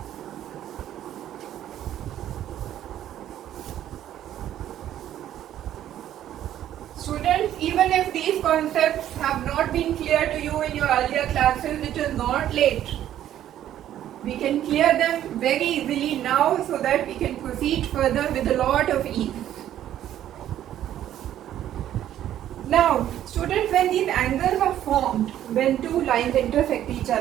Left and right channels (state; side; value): quieter; left; 11.7 dB